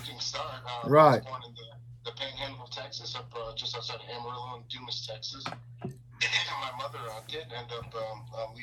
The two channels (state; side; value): identical; both; correlation 1.00